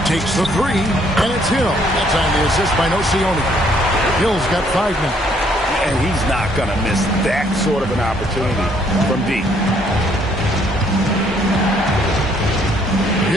Takes the three, and it's Hill. That's on the assist by Nocioni. Hill's got 5 now. And he's not going to miss that sort of an opportunity from deep.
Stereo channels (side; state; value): both; normal; correlation 0.66